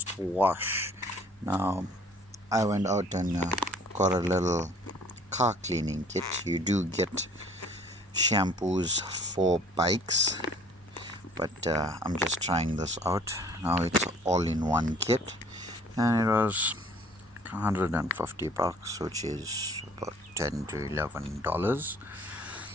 wash. Now, I went out and got a little car cleaning kit. You do get shampoos for bikes, but I'm just trying this out. Now it's all in one kit, and it was $150, which is about $10 to $11.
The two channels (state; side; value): normal; both; correlation 0.54